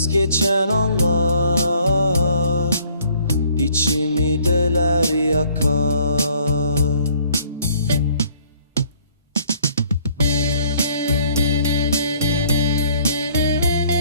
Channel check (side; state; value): both; inverted; correlation -0.61